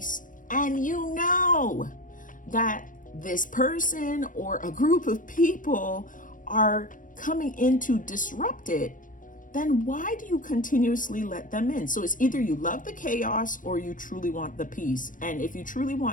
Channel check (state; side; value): late; right; 0.38 ms